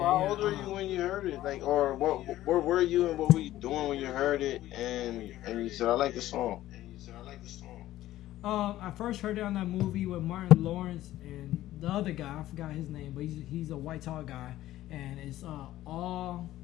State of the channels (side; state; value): right; quieter; 14.5 dB